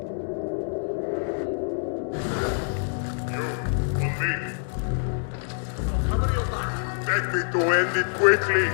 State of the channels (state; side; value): silent; right; digital silence